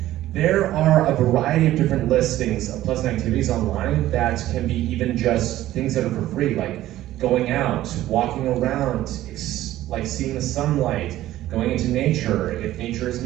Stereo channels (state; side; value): quieter; left; 14.4 dB